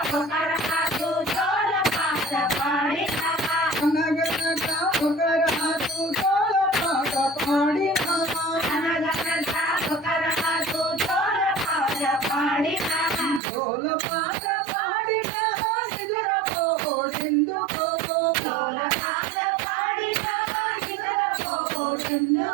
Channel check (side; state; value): left; drops out; at 13.4 s